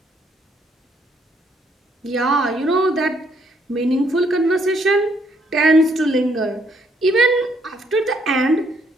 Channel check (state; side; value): normal; both; correlation 0.70